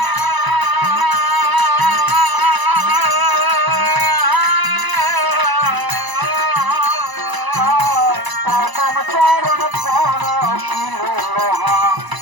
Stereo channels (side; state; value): left; late; 1.0 ms